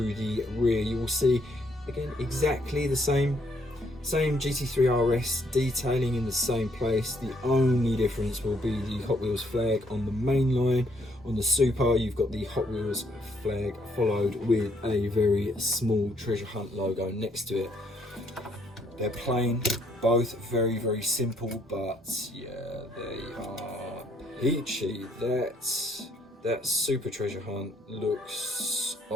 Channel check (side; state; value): both; normal; correlation 0.69